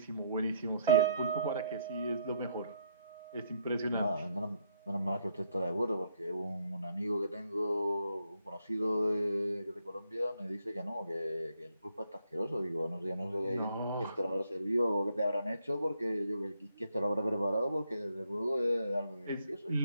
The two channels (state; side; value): inverted; both; correlation -0.71